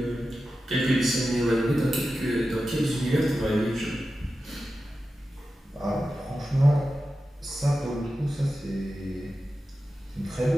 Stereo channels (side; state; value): both; normal; correlation 0.92